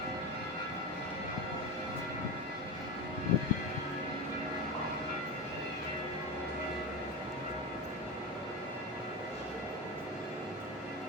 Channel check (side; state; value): both; normal; correlation 0.21